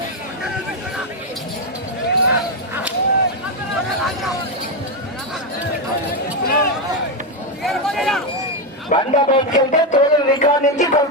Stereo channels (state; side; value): normal; both; correlation 0.06